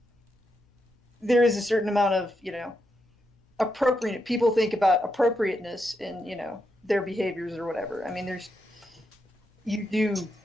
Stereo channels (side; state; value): both; normal; correlation 0.83